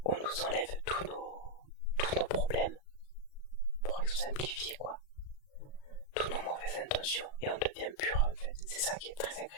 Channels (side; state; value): right; late; 37 ms